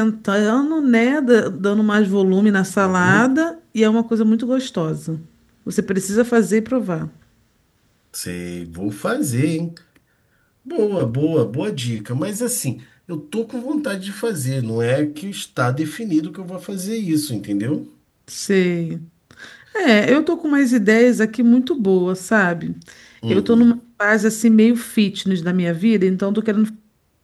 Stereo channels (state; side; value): identical; both; correlation 1.00